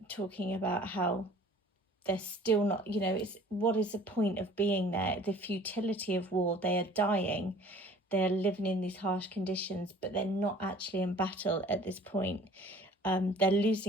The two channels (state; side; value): normal; both; correlation 0.50